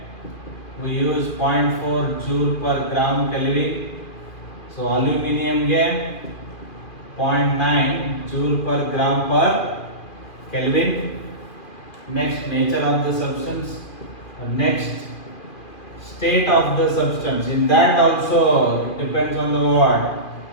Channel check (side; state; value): right; late; 2.5 ms